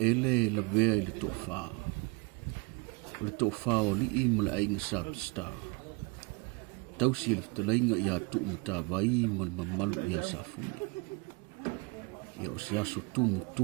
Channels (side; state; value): left; quieter; 28.0 dB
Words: la vea i le tofa. O le tofa o lii ma le ainga sa pista. Tausi le ftalainga ia tu matawai ma le mamalu ia sa fune. Ia o se aso